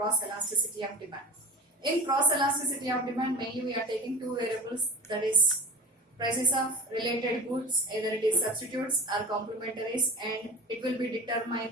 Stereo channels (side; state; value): both; normal; correlation 0.33